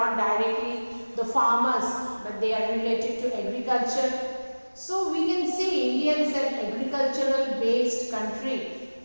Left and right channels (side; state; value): both; inverted; correlation -1.00